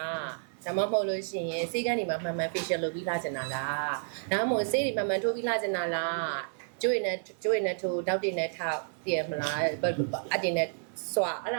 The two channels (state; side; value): silent; left; 57 dB below the other